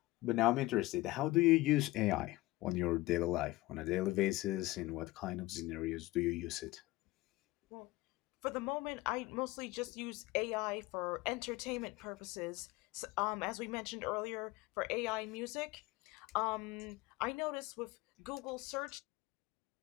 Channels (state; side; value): quieter; right; 19.5 dB